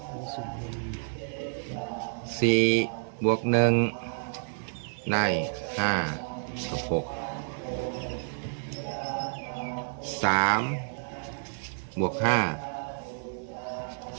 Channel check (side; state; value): left; silent; 58 dB below the other